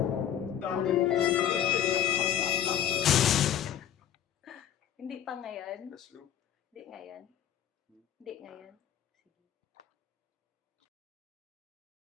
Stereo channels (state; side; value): quieter; right; 10.3 dB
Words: Hindi pa ngayon. Last loop. Hindi ngayon. Hindi ngayon. Sige.